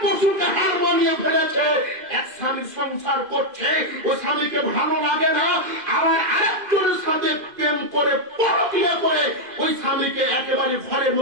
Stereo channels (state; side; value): late; left; 2.0 ms